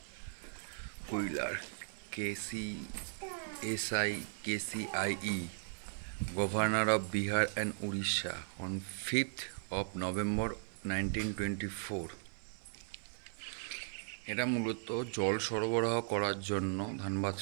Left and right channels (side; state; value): left; silent; 53 dB below the other